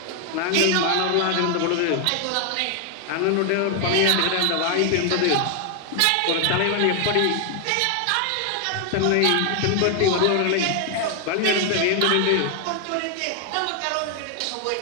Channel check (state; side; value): different; both; correlation 0.00